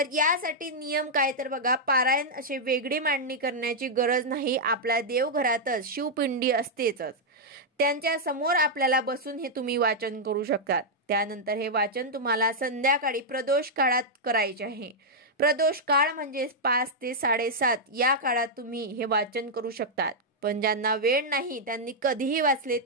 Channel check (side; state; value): both; normal; correlation -0.05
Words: यासाठी नियम काय तर बघा, पारायण असे वेगळी मांडणी करण्याची गरज नाही। आपल्या देवघरातच शिवपिंडी असतेच, त्यांच्या समोर आपल्याला बसून हे तुम्ही वाचन करू शकतात। त्यानंतर हे वाचन तुम्हाला संध्याकाळी प्रदोष काळात करायचे आहे। प्रदोष काळ म्हणजे 5 ते 7:30 या काळात तुम्ही हे वाचन करू शकतात, पण ज्यांना वेळ नाही त्यांनी कधीही वाचले